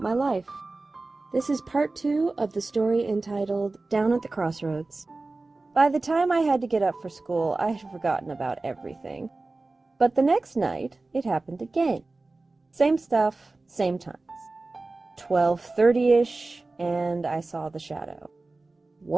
life. This is part 2 of the story entitled Down at the Crossroads. By the time I had to get up for school, I had forgotten about everything. But the next night, it happened again. Same stuff, same times. 12:30-ish, and I saw the shadow.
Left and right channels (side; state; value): left; quieter; 3.3 dB